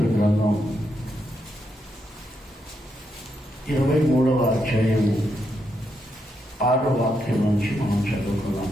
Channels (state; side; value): normal; both; correlation 0.81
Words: గ్రంథం 23వ అధ్యాయము 6వ వాక్యం నుంచి మనం చదువుకున్నాం.